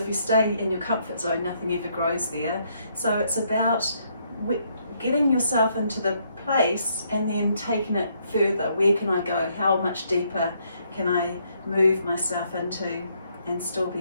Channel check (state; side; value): inverted; both; correlation -0.72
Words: you stay in your comfort zone, nothing ever grows there. So it's about getting yourself into the place and then taking it further. Where can I go? How much deeper can I move myself into and still